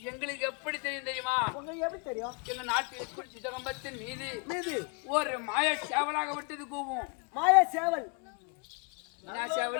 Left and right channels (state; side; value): quieter; right; 34.3 dB